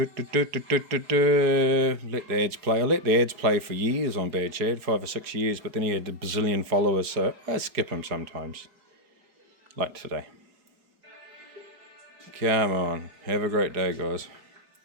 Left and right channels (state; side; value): late; left; 4.7 ms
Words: the ads play. I let the ads play for years on Bad Chad, 5 or 6 years, but then he had a bazillion followers, so I skip him sometimes. Like today. Come on. Have a great day, guys.